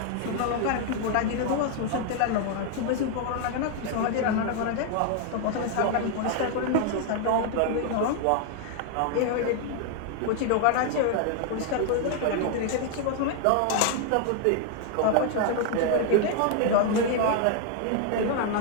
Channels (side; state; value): both; different; correlation 0.00